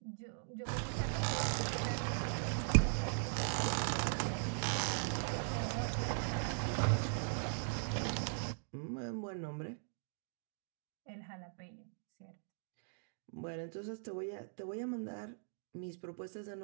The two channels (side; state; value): left; silent; digital silence